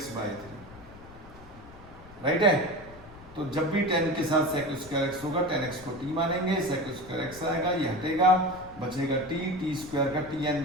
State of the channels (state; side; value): noise; left; rumble, 19 dB below the sound